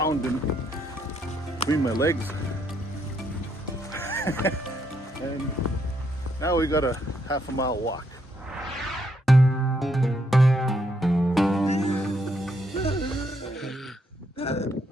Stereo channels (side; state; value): both; normal; correlation 0.75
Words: in between my legs. And now we got a half a mile walk.